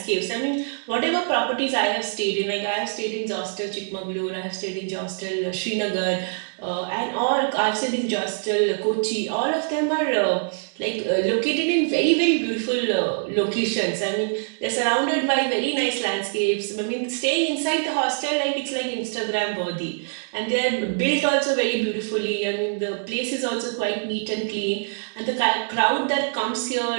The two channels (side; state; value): left; silent; digital silence